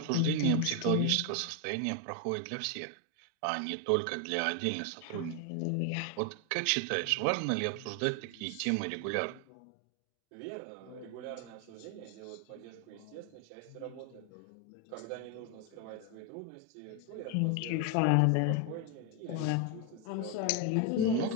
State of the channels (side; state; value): both; different; correlation 0.01